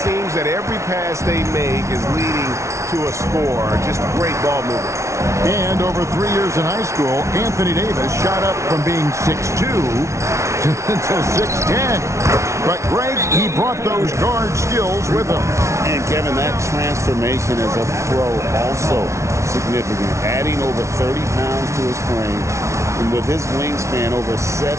seems that every pass they make is leading to a score. Just great ball movement. And over 3 years in high school, Anthony Davis shot up from being 6'2" to 6'10". But Greg, he brought those guard skills with him. And Kevin, that transformation as a pro also significant. Adding over 30 pounds to his frame. And with his wingspan over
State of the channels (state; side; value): late; left; 0.14 ms